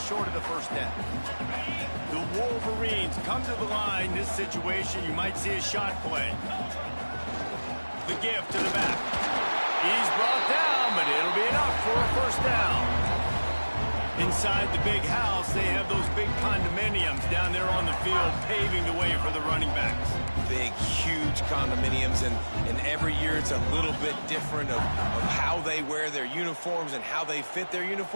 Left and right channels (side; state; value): both; inverted; correlation -1.00